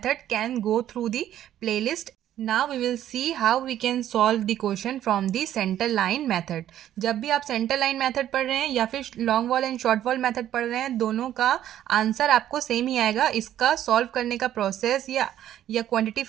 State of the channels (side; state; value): left; quieter; 11.7 dB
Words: can go through the playlist. Now we will see how we can solve the question from the center line method. जब भी आप center line method पढ़ रहे हैं या फिर long wall and short wall method पढ़ रहे हैं, दोनों का आंसर आपको सेम ही आएगा. इसका सॉल्व करने का प्रोसेस या क्वांटिटी